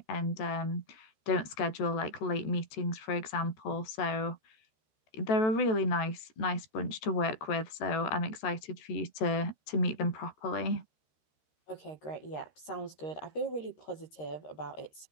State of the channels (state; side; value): late; right; 13 ms